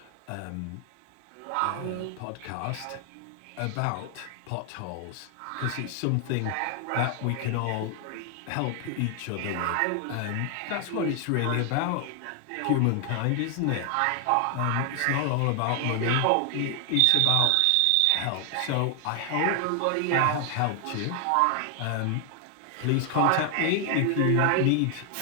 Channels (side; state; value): both; different; correlation 0.00